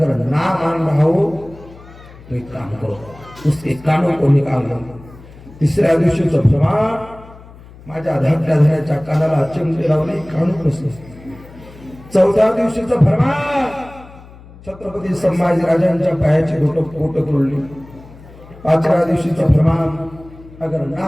ना मान रहा हो तो एक काम करो, उसके कानों को निकाल लो. तिसऱ्या दिवशीचं प्रमाण, माझ्या धाकट्या धन्याच्या कानाला चिमटे लावले, कान कसले. चौथ्या दिवशीचं फरमान, छत्रपती संभाजी राजांच्या पायाची बोटं तोडली. पाचव्या दिवशीचं फरमान, अगर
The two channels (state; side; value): noise; left; hum, 20 dB below the sound